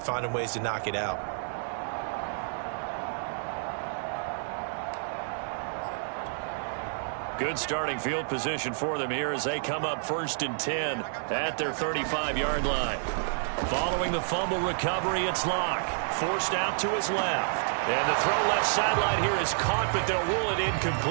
finding ways to knock it out. Good starting field position for them here as they come up 1st and 10 at their 35-yard line. Following the fumble recovery, it's Locke. Forced out to his left. And the throw left sideline here is caught, but they'll rule it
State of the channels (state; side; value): silent; left; digital silence